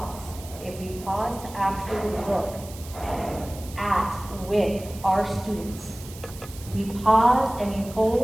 to actually look with our students, we pause and we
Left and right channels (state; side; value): noise; right; hiss, 17 dB below the sound